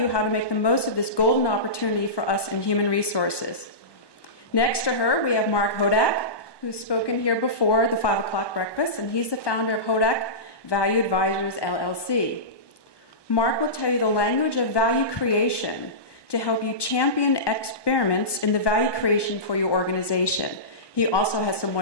how to make the most of this golden opportunity for us in human resources. Next to her, we have Mark Hodak, who's spoken here before the 5 o'clock breakfast, and he's the founder of Hodak Value Advisors, LLC. Mark will tell you the language of value creation to help you champion experiments in the value creation for your organization. He also has some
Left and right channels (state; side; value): late; right; 1.2 ms